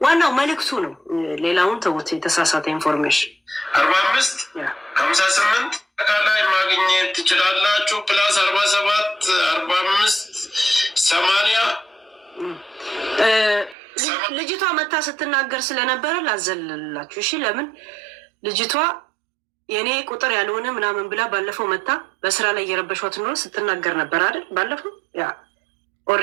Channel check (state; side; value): drops out; left; at 13.8 s